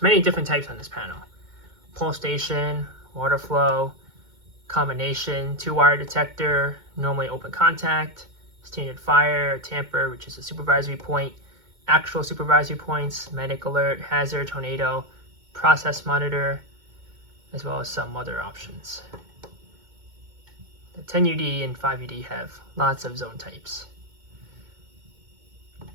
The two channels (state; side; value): late; left; 2.2 ms